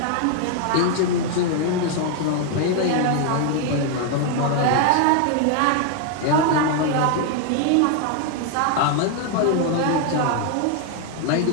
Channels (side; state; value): both; different; correlation 0.00